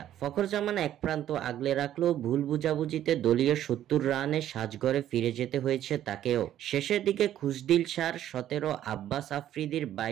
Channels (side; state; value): left; quieter; 11.7 dB